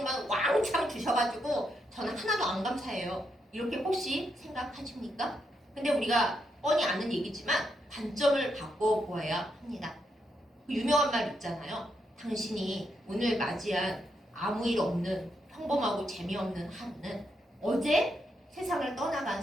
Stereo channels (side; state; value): both; normal; correlation 0.80